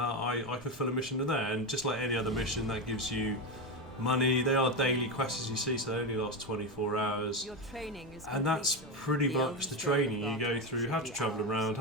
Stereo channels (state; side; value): normal; both; correlation 0.14